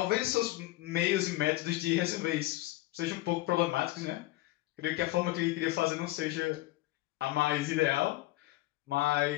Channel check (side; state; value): right; quieter; 17.7 dB